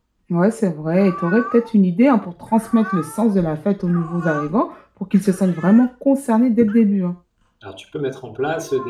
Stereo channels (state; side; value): identical; both; correlation 1.00